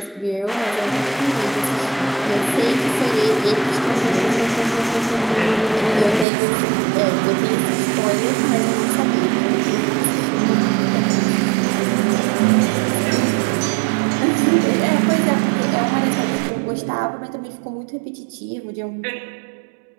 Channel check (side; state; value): left; drops out; at 6.2 s